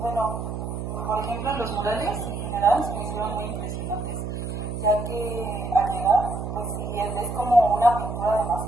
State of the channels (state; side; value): noise; right; hum, 5 dB below the sound